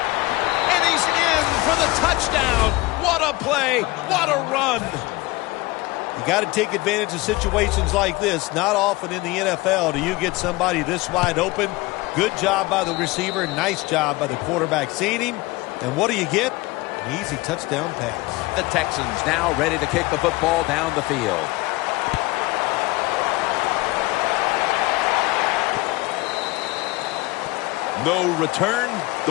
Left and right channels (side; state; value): right; quieter; 21.8 dB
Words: and he's in for the touchdown. What a play. What a run. You got to take advantage of situations like this. Not often in the NFL do you get somebody this wide open. Good job by the receiver. Nice job by the quarterback seeing him. And what do you get? An easy touchdown pass. The Texans now ready to kick the football down the field. No return.